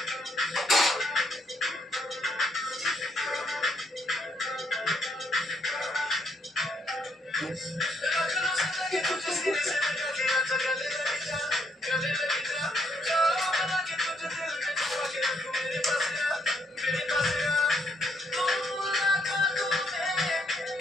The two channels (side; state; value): both; normal; correlation 0.73